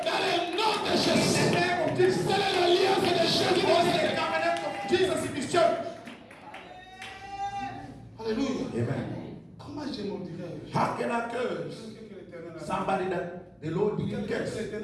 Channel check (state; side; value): identical; both; correlation 1.00